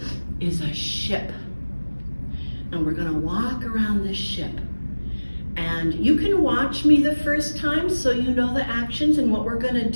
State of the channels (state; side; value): inverted; both; correlation -1.00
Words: is a ship. And we're going to walk around the ship. And you can watch me the first time so you know the actions and what we're going to